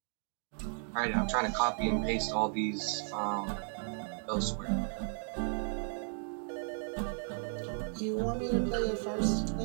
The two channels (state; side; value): silent; left; 55 dB below the other